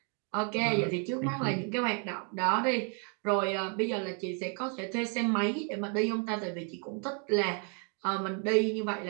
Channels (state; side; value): quieter; left; 39.9 dB